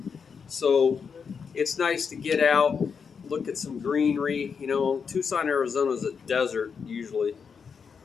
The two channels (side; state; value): right; quieter; 6.1 dB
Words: So it's nice to get out, look at some greenery. You know, Tucson, Arizona is a desert usually.